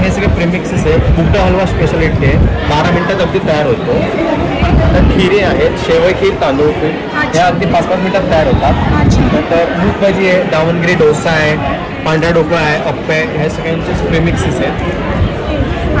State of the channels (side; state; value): both; identical; correlation 1.00